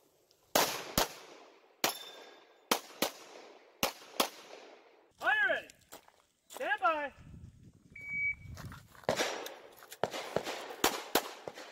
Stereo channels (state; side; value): identical; both; correlation 1.00